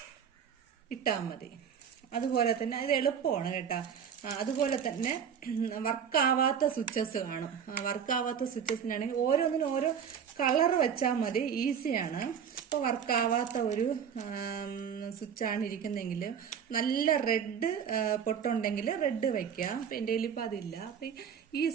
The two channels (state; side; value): quieter; left; 7.7 dB